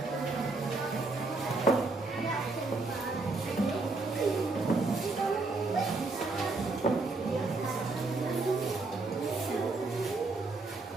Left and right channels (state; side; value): quieter; left; 3.5 dB